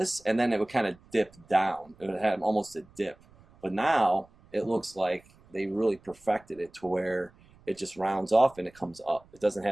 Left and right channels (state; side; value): noise; right; rumble, 28 dB below the sound